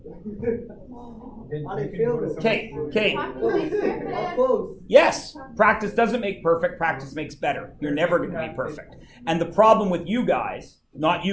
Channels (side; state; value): both; identical; correlation 1.00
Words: Okay. How close? Yes, practice doesn't make perfect, practice makes better. You're never going to be perfect. And the problem with you guys, not